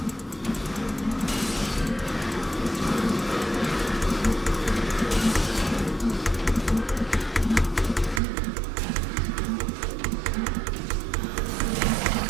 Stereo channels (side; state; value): left; drops out; at 8.2 s